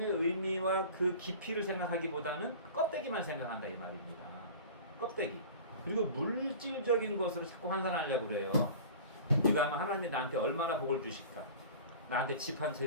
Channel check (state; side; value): inverted; both; correlation -0.39